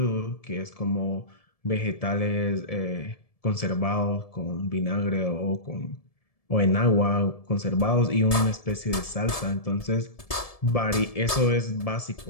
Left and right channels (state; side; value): late; right; 1.7 ms